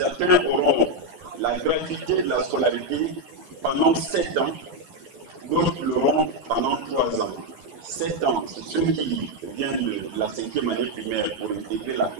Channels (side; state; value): left; late; 12 ms